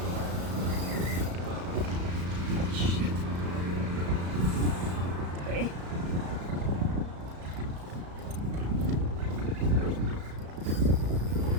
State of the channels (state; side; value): late; left; 34 ms